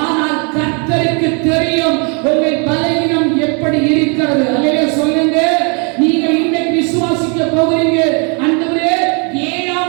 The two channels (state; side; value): quieter; left; 36.0 dB